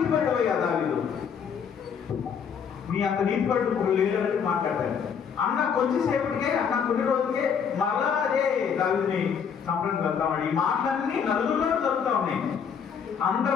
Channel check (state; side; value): quieter; right; 7.0 dB